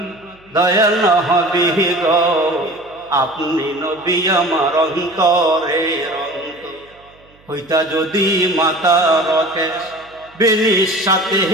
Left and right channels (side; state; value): right; noise; hum, 30 dB below the sound